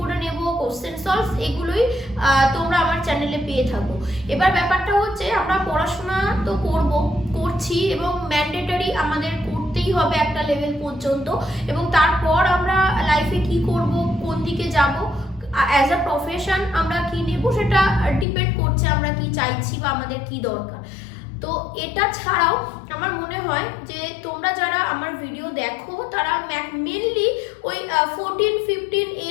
নেব, কোশ্চেন সলভ, এগুলোই তোমরা আমার চ্যানেলে পেয়ে থাকো। এবার ব্যাপারটা হচ্ছে আমরা পড়াশোনা তো করছি এবং ম্যান্ডেটরি আমাদের করতেই হবে একটা লেভেল পর্যন্ত, এবং তারপর আমরা লাইফে কি করব, কোন দিকে যাব, অ্যাজ আ প্রফেশন আমরা কি নেব, সেটা ডিপেন্ড করছে আমরা কি চাইছি বা আমাদের কি দরকার। তো এটা ছাড়াও আমার মনে হয় যে তোমরা যারা আমার ভিডিও দেখো তারা মেনলি ওই 14-15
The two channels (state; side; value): drops out; right; at 18.2 s